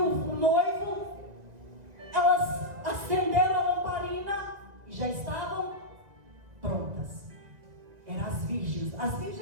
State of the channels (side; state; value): left; late; 1.9 ms